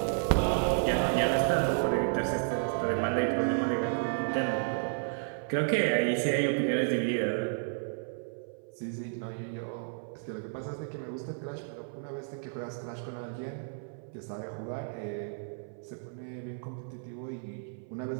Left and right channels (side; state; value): left; silent; 56 dB below the other